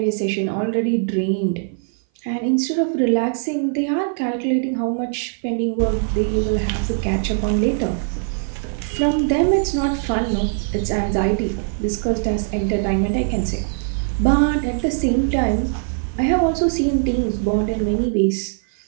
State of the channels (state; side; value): silent; left; 58 dB below the other